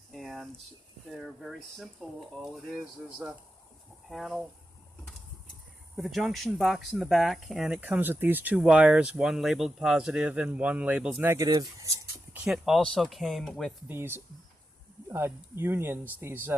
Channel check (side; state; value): both; normal; correlation 0.89